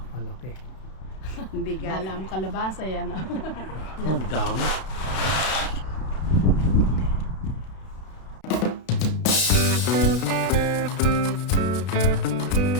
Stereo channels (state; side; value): late; right; 32 ms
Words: kalaki. Bigat. Alam kalabasa yan. Oh, ang dami.